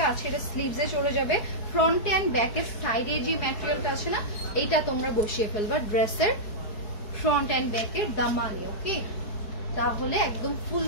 আছে এটা স্লিভসে চলে যাবে। ফ্রন্ট এন্ড ব্যাকের সাইডে যে ম্যাটেরিয়ালটা আছে না, এইটা তোমরা বসিয়ে ফেলবা ড্রেসের ফ্রন্ট এন্ড ব্যাকের দামানে। ওকে, তাহলে একদম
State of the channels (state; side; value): late; right; 4.7 ms